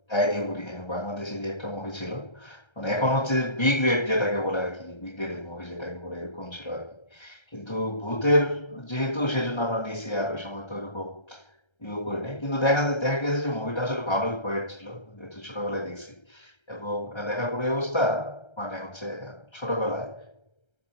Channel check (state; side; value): late; right; 1.3 ms